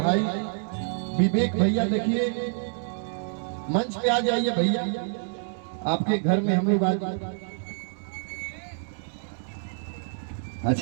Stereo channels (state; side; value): silent; left; digital silence